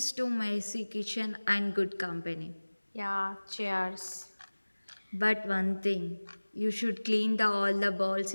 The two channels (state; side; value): inverted; both; correlation -1.00